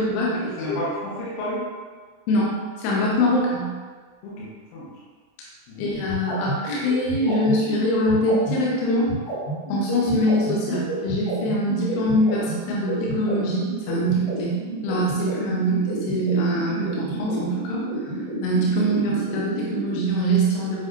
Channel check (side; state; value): right; late; 27 ms